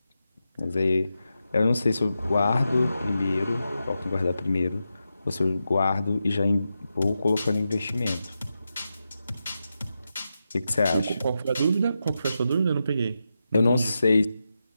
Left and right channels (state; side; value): inverted; both; correlation -0.89